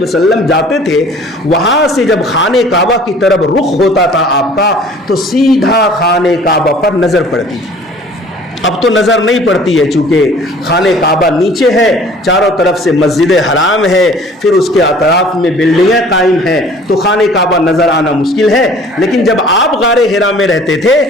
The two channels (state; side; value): normal; both; correlation 0.50